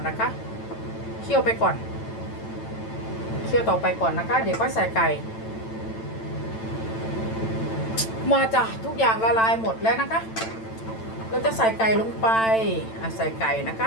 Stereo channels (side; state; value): right; late; 9.0 ms